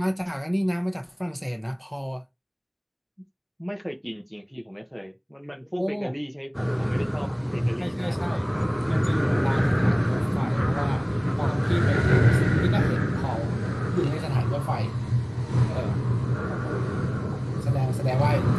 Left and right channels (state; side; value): identical; both; correlation 1.00